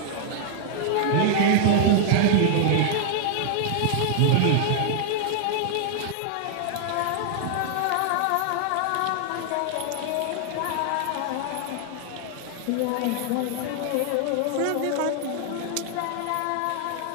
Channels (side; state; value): both; different; correlation 0.00